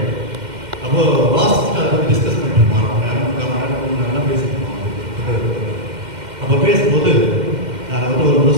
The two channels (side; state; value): left; late; 2.1 ms